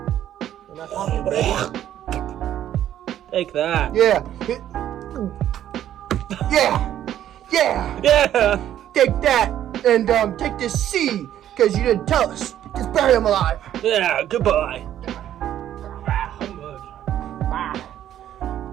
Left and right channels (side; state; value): left; quieter; 11.4 dB